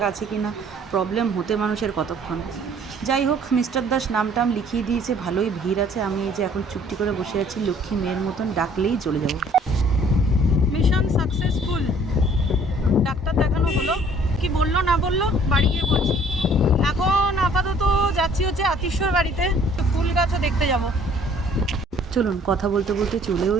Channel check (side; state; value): both; normal; correlation 0.56